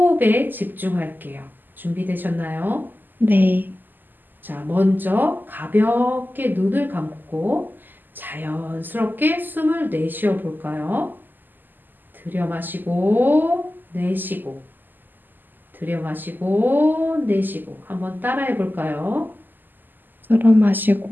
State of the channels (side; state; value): left; late; 0.089 ms